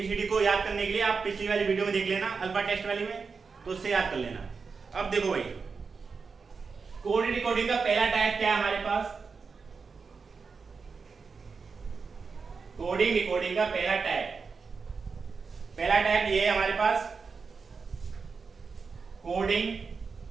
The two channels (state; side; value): quieter; left; 5.0 dB